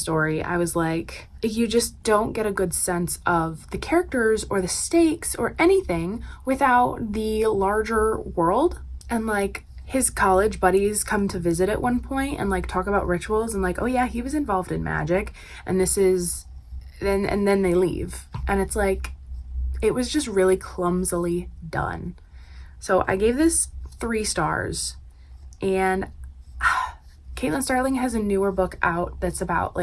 I was like, you just don't get a good sense of the characters or the stakes or anything without the larger world. And like, his college buddies come to visit at one point and like talk about rituals and like, oh yeah, he was involved in magic, and this is, and then they leave. And it's like, it was just really clumsily done. So I gave this 3 stars, and Caitlin Starling has a newer book out that's about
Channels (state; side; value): identical; both; correlation 1.00